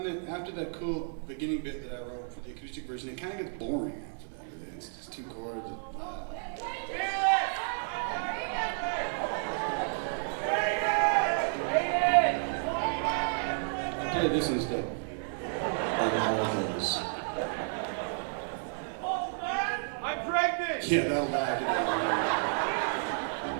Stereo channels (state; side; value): silent; left; 57 dB below the other